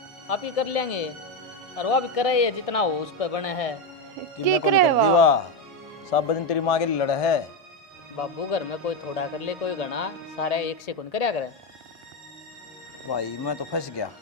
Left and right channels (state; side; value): normal; both; correlation 0.09